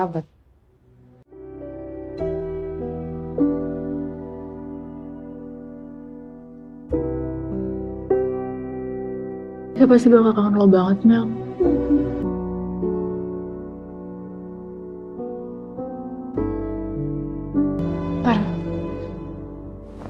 Dia pasti bakal kangen lo banget, Mel. Ntar.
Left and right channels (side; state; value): both; identical; correlation 1.00